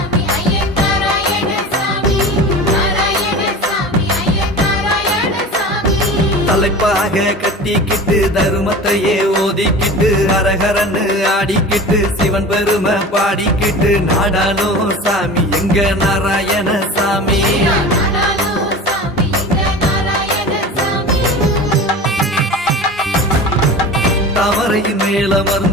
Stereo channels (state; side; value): normal; both; correlation 0.35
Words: தலைப்பாக கட்டிக்கிட்டு தருமத்தையே ஓதிக்கிட்டு அரகரன்னு ஆடிக்கிட்டு சிவன் பெருமை பாடிக்கிட்டு நாடாலும் சாமி எங்க நாராயண சாமி. தாமரையின் மேல